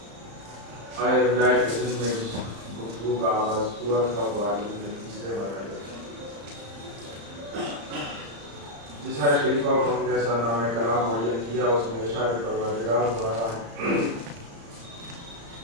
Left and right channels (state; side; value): late; left; 34 ms